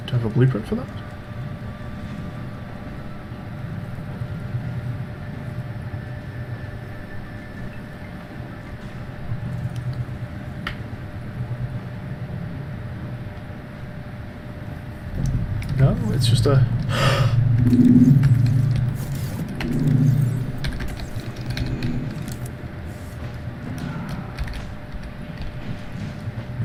Do I have a blueprint for that? No, it's just a...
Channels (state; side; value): identical; both; correlation 1.00